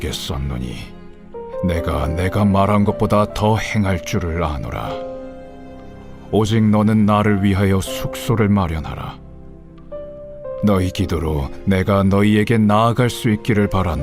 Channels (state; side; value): identical; both; correlation 1.00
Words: 썼노니 내가 말한 것보다 더 행할 줄을 아노라. 오직 너는 나를 위하여 숙소를 마련하라. 너희 기도로 내가 너희에게 나아갈 수 있기를